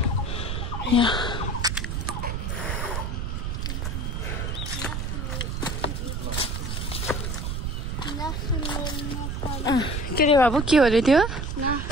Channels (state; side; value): noise; right; rumble, 2 dB below the sound